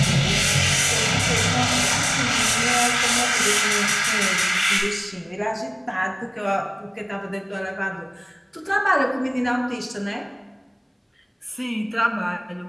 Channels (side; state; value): both; identical; correlation 1.00